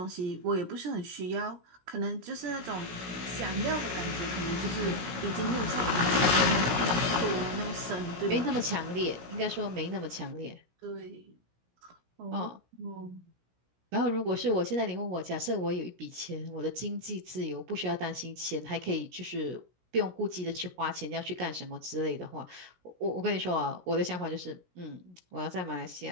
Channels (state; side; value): late; left; 17 ms